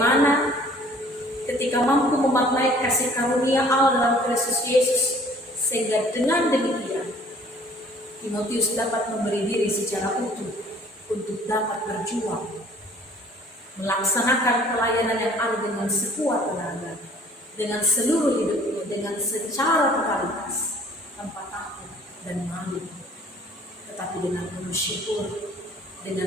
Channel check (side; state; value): both; normal; correlation 0.54